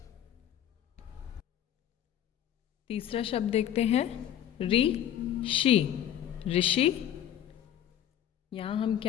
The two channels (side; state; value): right; quieter; 10.7 dB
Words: तीसरा शब्द देखते हैं ऋ षि, ऋषि। यहाँ हम